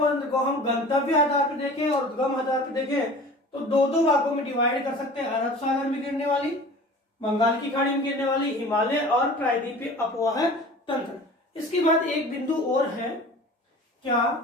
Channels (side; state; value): both; normal; correlation 0.41